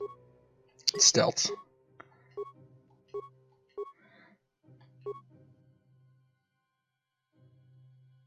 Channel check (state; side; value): identical; both; correlation 1.00